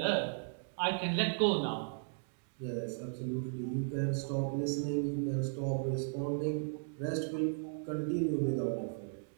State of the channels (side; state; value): left; silent; digital silence